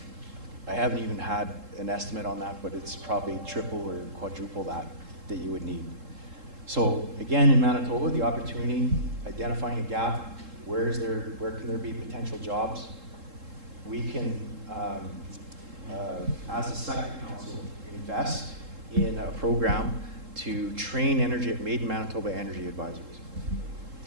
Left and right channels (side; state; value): left; late; 3.7 ms